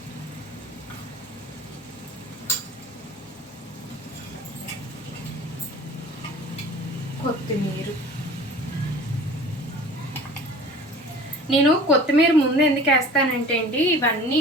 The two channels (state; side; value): normal; both; correlation 0.43